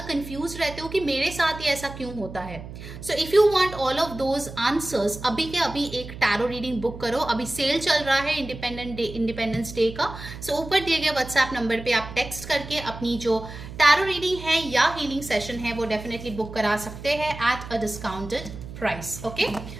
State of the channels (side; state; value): right; noise; hum, 12 dB below the sound